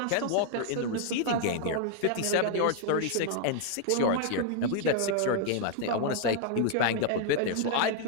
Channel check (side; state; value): both; different; correlation 0.00